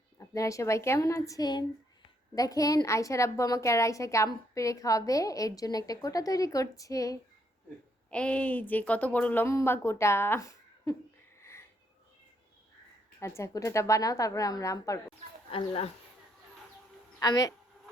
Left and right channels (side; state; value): both; normal; correlation 0.73